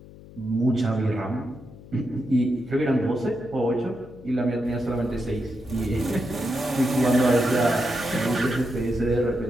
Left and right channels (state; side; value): noise; left; hum, 19 dB below the sound